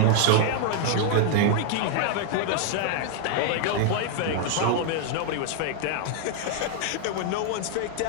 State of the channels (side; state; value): both; different; correlation 0.00